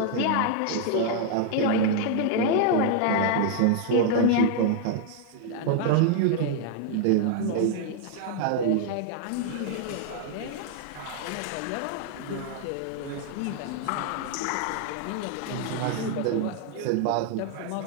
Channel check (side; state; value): both; different; correlation 0.00